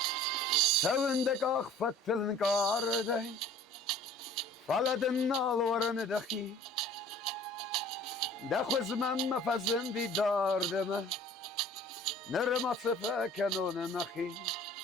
Sevindek akfatılın karday Faladın alvarını dahi Dakhuz memme fazın didar deme Nırma sıfeken onu mehi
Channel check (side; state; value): both; normal; correlation 0.48